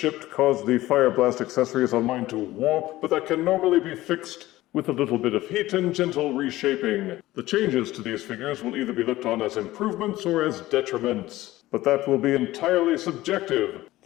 caused the Fire Blast accessories on mine to warp, but that can normally be fixed with a little bit of heat and gentle reshaping. The changes to these figures will either be looked on as improvements or as detriments, but that will be entirely subjective.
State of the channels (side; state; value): right; quieter; 16.8 dB